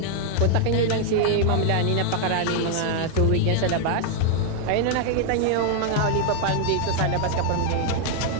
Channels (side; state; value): both; different; correlation 0.00